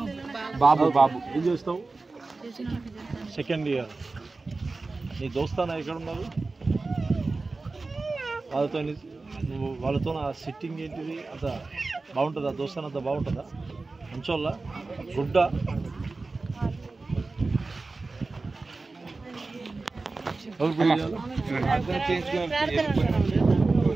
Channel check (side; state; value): left; quieter; 3.6 dB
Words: బాబు బాబు ఏం చేస్తావు సెకండ్ ఇయర్ నీ దోస్తానా ఎక్కడ ఉన్నారు వాళ్ళతో నువ్వు వాళ్ళతో నా సిట్టింగ్ ఏంటిది అంత బాగుంటుందా దోస్తాన అంత బాగుంటుందా మంచోళ్ళ గుడ్డ